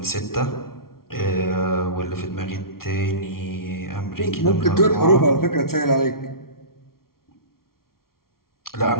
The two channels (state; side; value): late; right; 0.93 ms